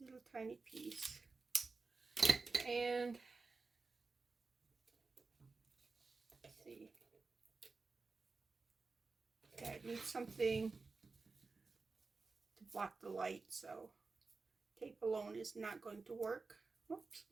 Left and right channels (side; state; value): left; quieter; 4.1 dB